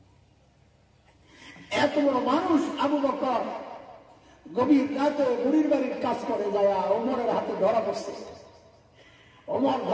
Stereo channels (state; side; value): identical; both; correlation 1.00